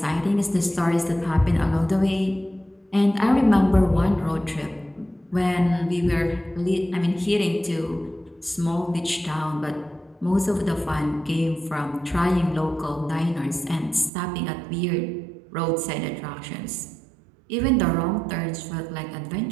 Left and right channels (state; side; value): drops out; left; at 14.1 s